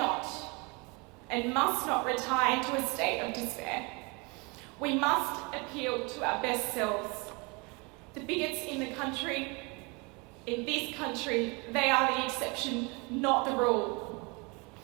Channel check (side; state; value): left; quieter; 29.1 dB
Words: and must not retire into a state of despair. We must appeal to our best selves. The bigots in this country, they are the exception, not the rule.